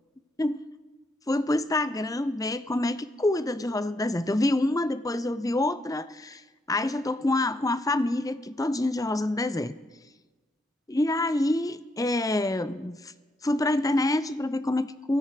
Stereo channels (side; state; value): both; normal; correlation 0.77